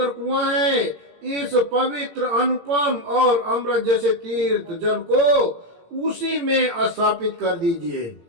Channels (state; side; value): late; left; 18 ms